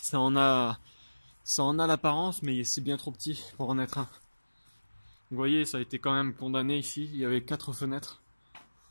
en a l'apparence, mais c'est bien trop petit pour en être un. Vous voyez, ça a été quand même condamné ici. Il y avait 4 fenêtres.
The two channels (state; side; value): inverted; both; correlation -1.00